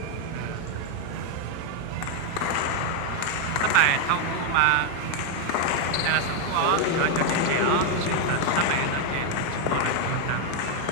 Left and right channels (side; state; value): both; different; correlation 0.01